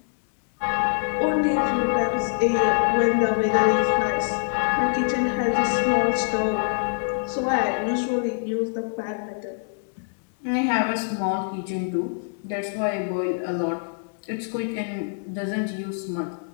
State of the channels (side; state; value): right; silent; digital silence